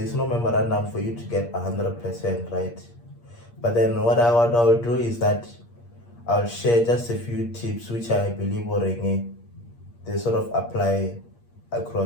no memorandum for you to get 100%, right? But then what I'll do is that I'll share just a few tips which I believe they sort of apply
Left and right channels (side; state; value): right; late; 8.5 ms